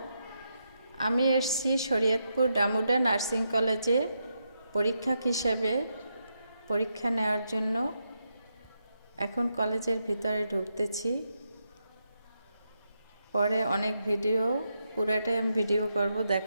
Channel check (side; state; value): both; inverted; correlation -0.83